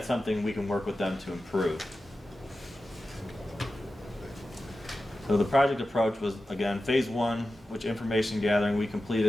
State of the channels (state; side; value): normal; both; correlation 0.93